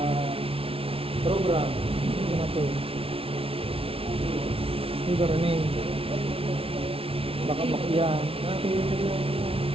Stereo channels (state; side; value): late; left; 0.27 ms